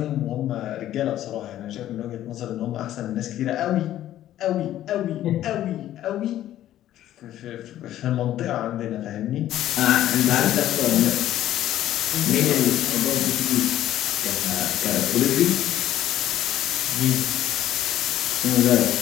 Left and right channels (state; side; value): quieter; right; 12.8 dB